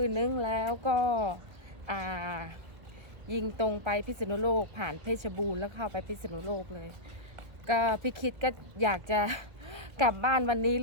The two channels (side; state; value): left; late; 1.6 ms